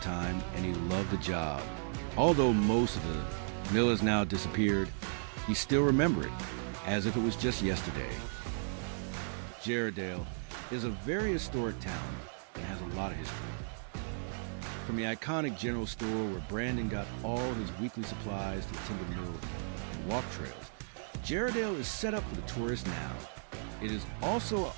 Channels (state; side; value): silent; left; digital silence